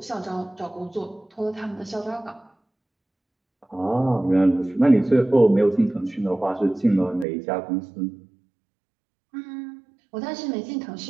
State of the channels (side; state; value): left; drops out; at 7.2 s